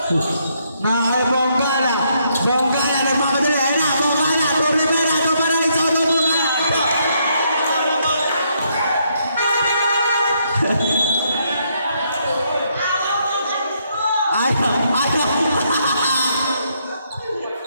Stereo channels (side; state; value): both; inverted; correlation -0.74